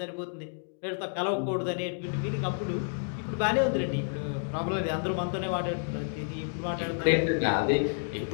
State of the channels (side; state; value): right; silent; digital silence